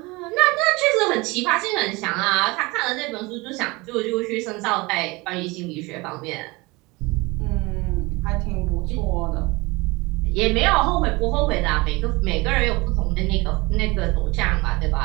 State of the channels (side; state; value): left; quieter; 24.1 dB